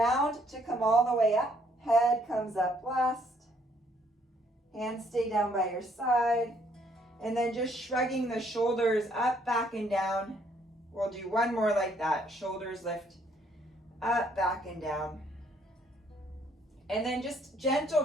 to come all the way up. Head comes up last. Hands stay down by your side. And then just shrugging the shoulders up, back, and down. We'll do one more like that. Shoulders lift up, back, and down. And then just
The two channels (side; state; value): both; normal; correlation 0.67